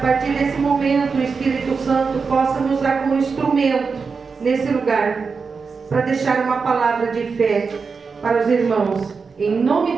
partir desse momento o Espírito Santo possa me usar como instrumento nesse lugar, para deixar uma palavra de fé para os irmãos, em nome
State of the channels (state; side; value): quieter; left; 5.1 dB